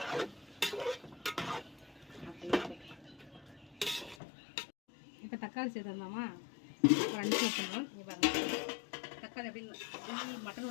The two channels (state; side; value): drops out; right; at 4.2 s